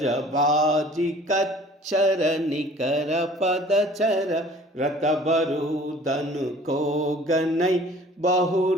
कच्छर निकर पदचर, रत बरुदन को गनई।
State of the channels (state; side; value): normal; both; correlation 0.50